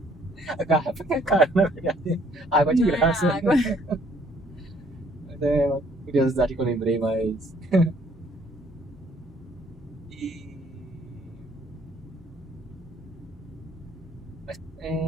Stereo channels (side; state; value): both; normal; correlation 0.63